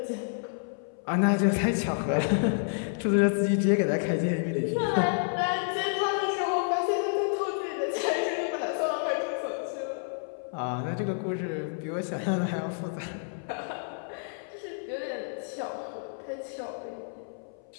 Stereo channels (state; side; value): silent; right; 57 dB below the other